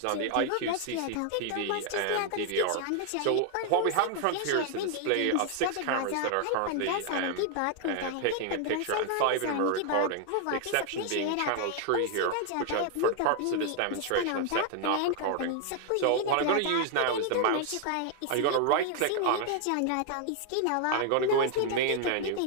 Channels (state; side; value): different; both; correlation 0.00